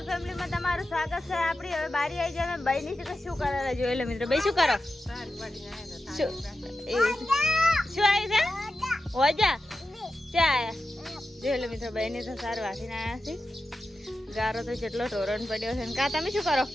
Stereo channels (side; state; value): both; normal; correlation 0.91